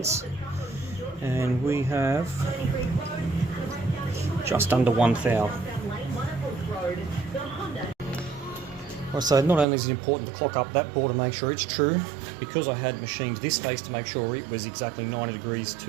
and we have just under 1 thou. Alright, so not only is it important to clock up that bore to make sure it's true, because I had machined this face to make sure it was exactly 90 degrees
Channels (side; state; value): left; drops out; at 9.7 s